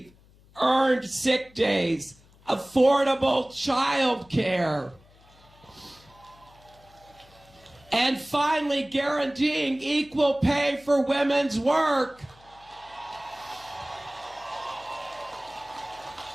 earned sick days, affordable child care, and finally guaranteeing equal pay for women's work.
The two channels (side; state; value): left; noise; hum, 27 dB below the sound